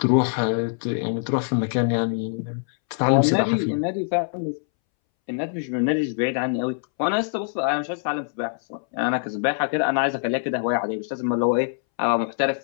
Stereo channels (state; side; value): silent; right; 63 dB below the other